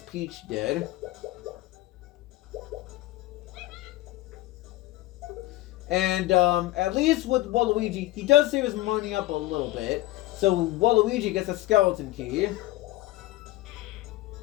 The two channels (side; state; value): right; quieter; 17.4 dB